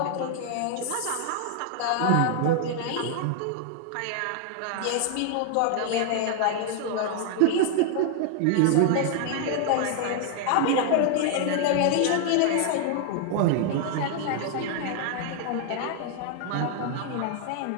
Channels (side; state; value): both; different; correlation 0.00